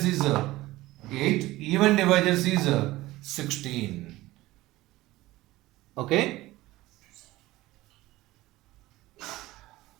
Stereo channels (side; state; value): left; quieter; 18.0 dB